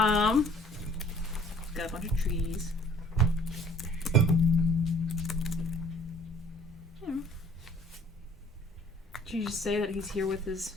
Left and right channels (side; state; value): both; normal; correlation 0.55